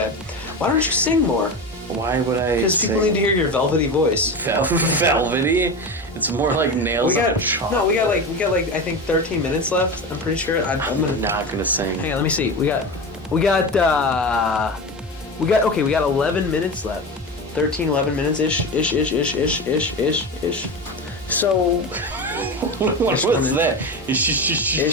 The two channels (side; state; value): both; normal; correlation 0.24